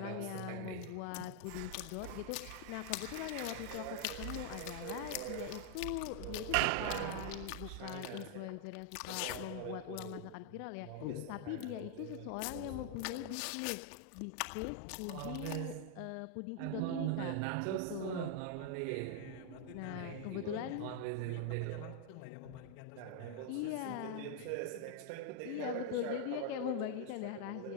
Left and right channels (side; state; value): both; different; correlation 0.00